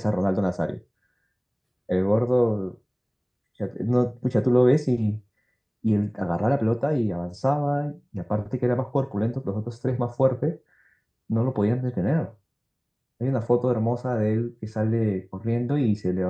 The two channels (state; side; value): identical; both; correlation 1.00